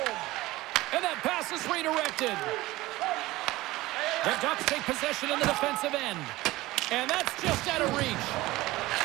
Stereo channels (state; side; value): quieter; left; 18.6 dB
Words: And that pass is redirected. The Ducks take possession in the defensive end. And that's just out of reach.